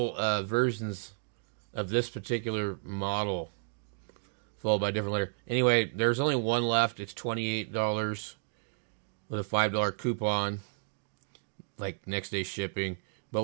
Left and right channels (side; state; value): left; silent; digital silence